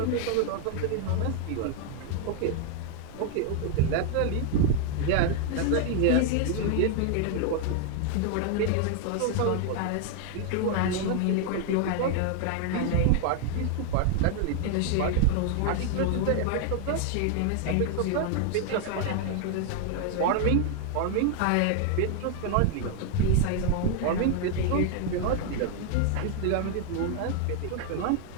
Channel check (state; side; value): different; both; correlation 0.00